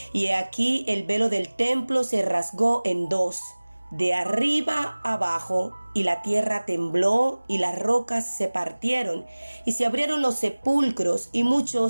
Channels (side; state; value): both; inverted; correlation -1.00